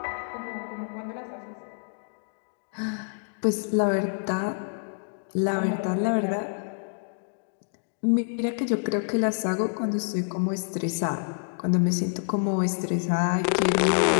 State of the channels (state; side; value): silent; right; digital silence